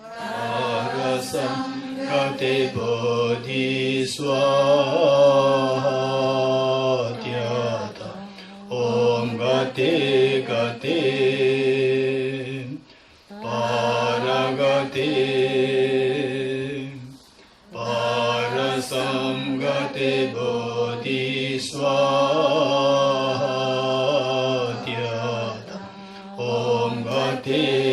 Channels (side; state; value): both; identical; correlation 1.00